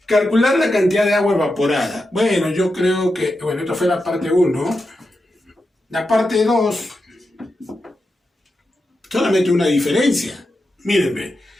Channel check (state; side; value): normal; both; correlation 0.89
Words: Calcular la cantidad de agua evaporada. Bueno, yo creo que, bueno, esto fue la parte 1. La parte 2, solamente una diferencia. Mírenme,